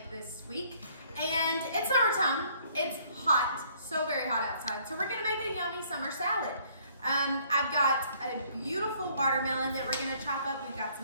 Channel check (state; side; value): inverted; both; correlation -0.62